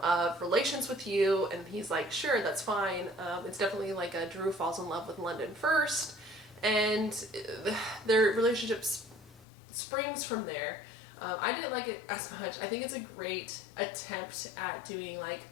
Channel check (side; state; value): right; drops out; at 9.5 s